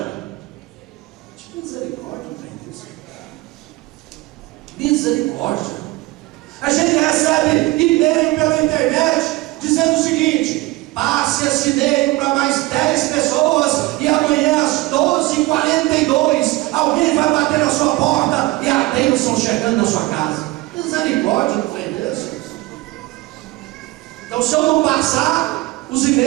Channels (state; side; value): quieter; left; 20.0 dB